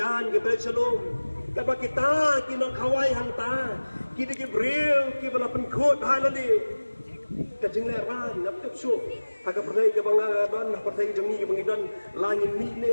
ke balik salong kaba kita kinong kawai hangta kini ke bril ke bala penkot halali kajing leran ngap su haga pernai ke bangaban partai jemi ke bangidan langin ni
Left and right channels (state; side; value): inverted; both; correlation -1.00